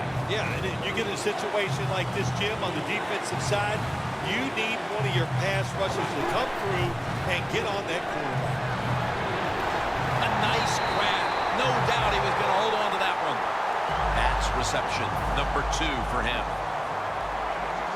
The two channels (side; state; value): both; identical; correlation 1.00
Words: Yeah, and you get a situation like this, Jim, on the defensive side, you need one of your pass rushers to come through and get on that quarterback. A nice grab. No doubt he was going to hold on to that one. That's reception number 2 for him.